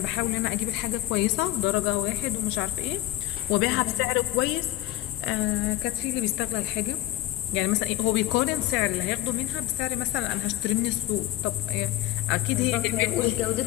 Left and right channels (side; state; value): right; quieter; 15.0 dB